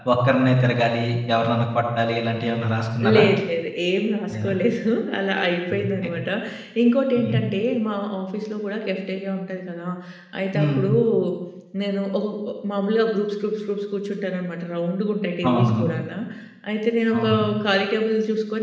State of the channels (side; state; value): both; identical; correlation 1.00